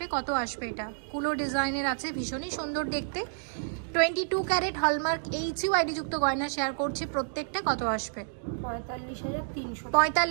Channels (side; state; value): left; silent; digital silence